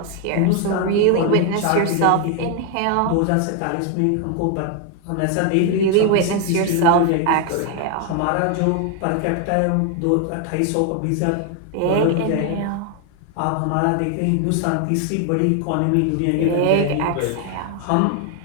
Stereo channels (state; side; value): different; both; correlation 0.00